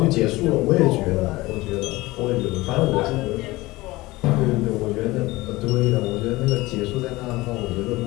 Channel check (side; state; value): right; quieter; 20.1 dB